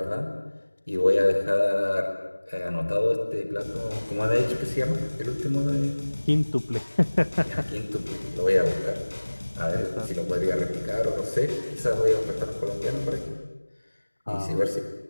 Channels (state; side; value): inverted; both; correlation -1.00